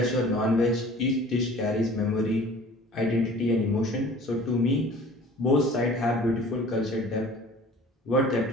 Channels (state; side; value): normal; both; correlation 0.46